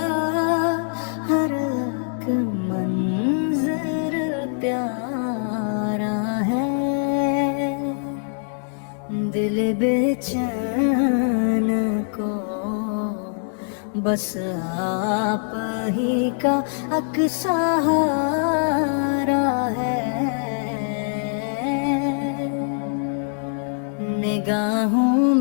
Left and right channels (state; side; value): silent; right; 63 dB below the other